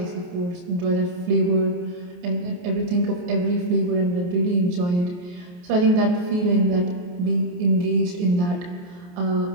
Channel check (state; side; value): late; left; 28 ms